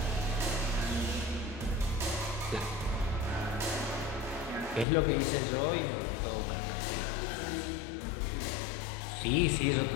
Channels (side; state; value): right; drops out; at 4.9 s